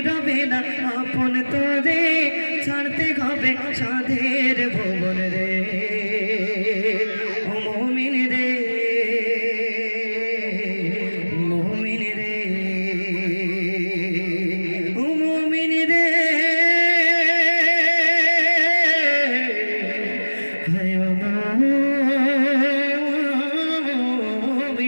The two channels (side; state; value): both; inverted; correlation -1.00